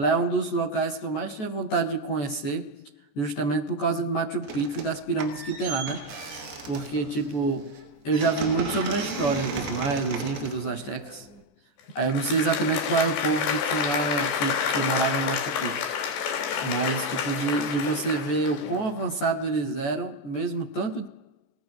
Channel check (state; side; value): late; right; 14 ms